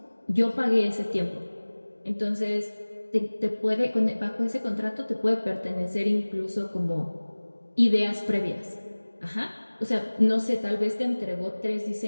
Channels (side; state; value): both; inverted; correlation -1.00